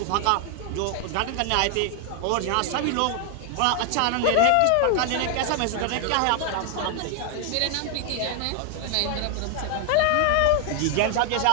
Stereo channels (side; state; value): both; different; correlation 0.00